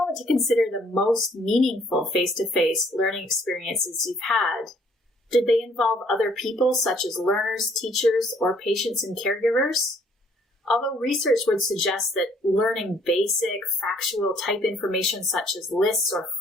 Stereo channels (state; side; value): normal; both; correlation 0.63